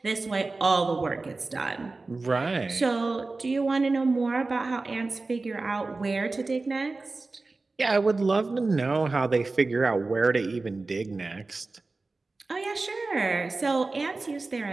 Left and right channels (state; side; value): quieter; left; 3.5 dB